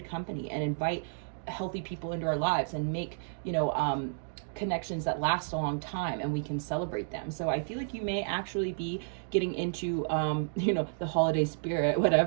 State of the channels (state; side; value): silent; left; digital silence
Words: company and invite healthy people into our lives and make, you know, connections that last a long time, and we can celebrate them. So I feel like you may actually be getting into, you know, the holiday spirit,